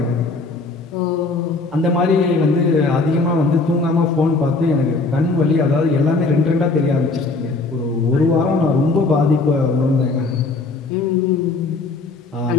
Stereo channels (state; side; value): quieter; right; 3.7 dB